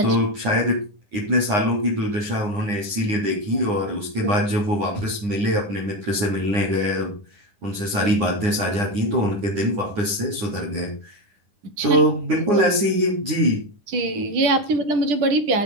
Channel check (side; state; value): left; late; 9.8 ms